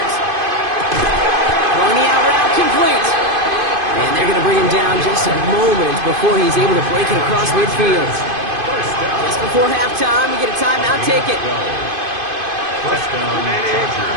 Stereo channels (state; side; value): late; left; 2.5 ms